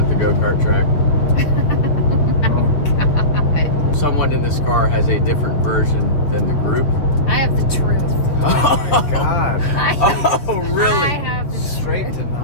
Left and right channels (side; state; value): right; late; 6.9 ms